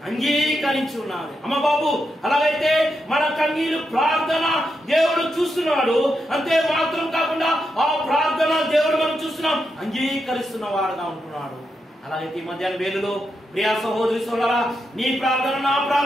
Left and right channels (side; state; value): both; normal; correlation 0.84